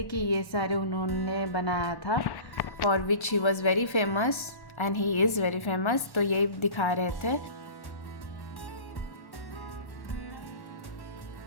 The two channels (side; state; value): right; late; 1.1 ms